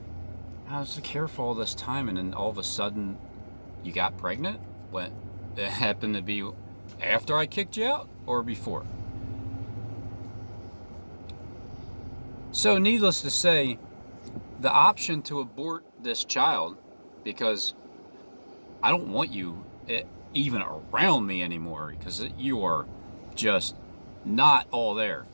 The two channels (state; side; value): inverted; both; correlation -1.00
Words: I was careful all this time, and then all of a sudden, you got pregnant? When it happened to be after I kicked you out or before? So needless to say, the option to abort this child, because I don't want you even around me anymore, because you are just not all there.